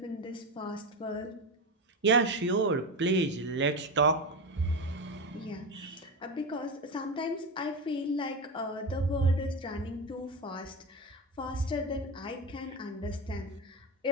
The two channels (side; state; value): both; normal; correlation 0.19